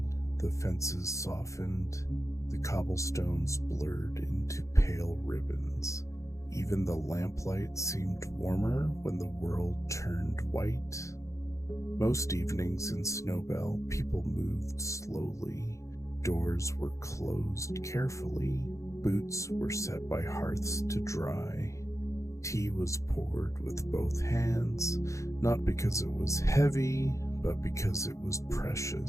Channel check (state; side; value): late; right; 0.15 ms